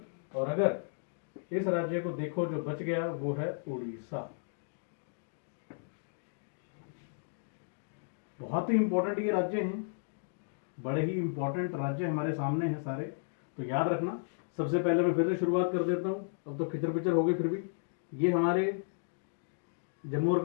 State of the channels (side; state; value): right; silent; digital silence